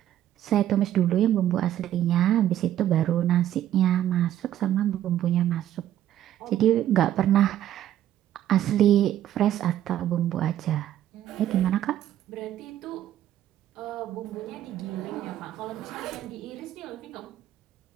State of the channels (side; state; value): left; quieter; 11.9 dB